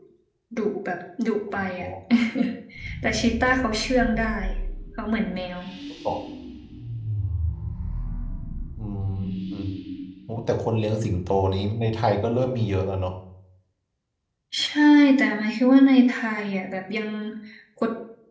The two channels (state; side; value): identical; both; correlation 1.00